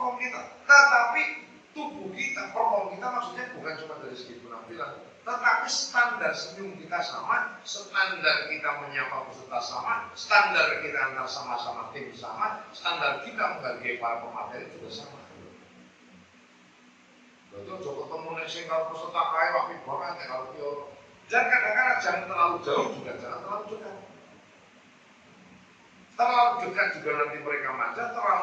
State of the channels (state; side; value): identical; both; correlation 1.00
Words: kita, tetapi tubuh kita, perform kita maksudnya bukan cuma dari segi penampilan, tetapi standar senyum kita sama, standar kita menyapa peserta sama, standar kita antar sama-sama tim sama, standar kita menghargai para pemateri juga sama. Betul, coba ketemu nih kalau peserta kaya waktu banget ya kalau dia. Dan kadang-kadang jangan terlalu jauh juga, jangan terlalu dekat. Terlalu dekat juga nanti mereka manja,